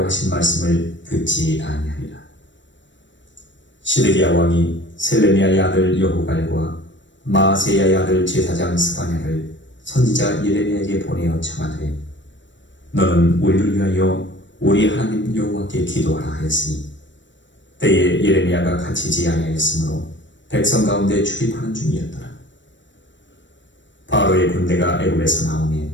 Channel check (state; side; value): late; right; 0.54 ms